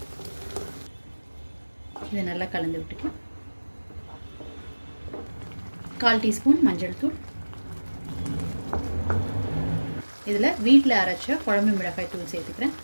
இதை நல்லா கலந்து விட்டுக்கலாம். 1/4 டீஸ்பூன் மஞ்சள் தூள், இதில் வீட்டில் அரைச்ச குழம்பு மிளகாய் தூள் சேர்த்துக்கிறேன்.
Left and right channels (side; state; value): both; inverted; correlation -1.00